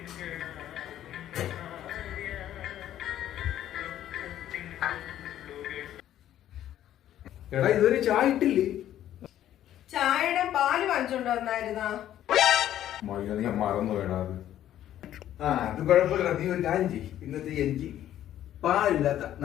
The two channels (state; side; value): quieter; right; 11.9 dB